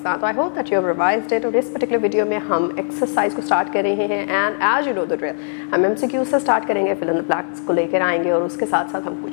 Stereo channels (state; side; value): silent; right; digital silence